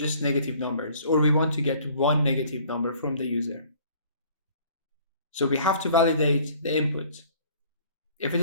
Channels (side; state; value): both; inverted; correlation -0.55